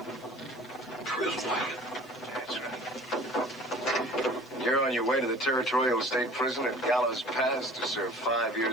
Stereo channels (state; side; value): noise; right; hiss, 28 dB below the sound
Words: Prison wagon? That's right. You're on your way to the Territorial State Prison at Gallows Pass to serve 5